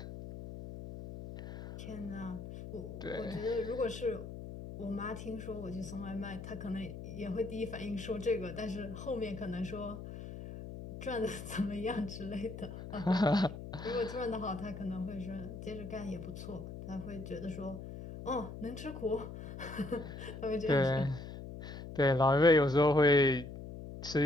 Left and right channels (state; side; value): noise; left; hum, 10 dB below the sound